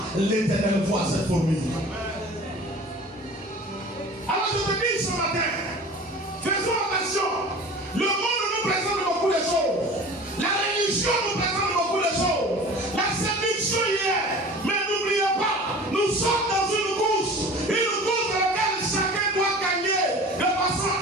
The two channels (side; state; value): both; normal; correlation 0.41